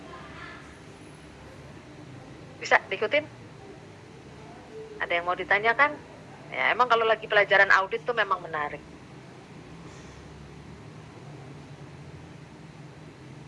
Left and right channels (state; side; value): identical; both; correlation 1.00